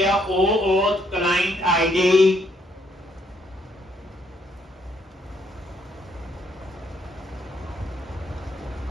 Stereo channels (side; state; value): both; normal; correlation 0.71